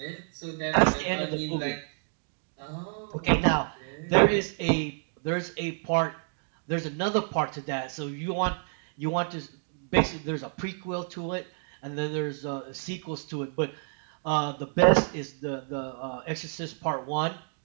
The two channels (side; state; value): left; silent; 58 dB below the other